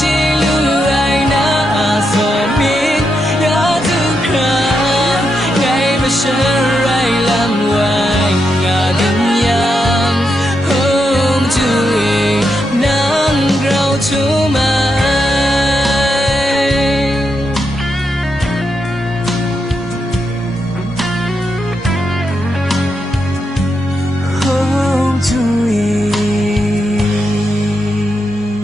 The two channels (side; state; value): both; normal; correlation 0.83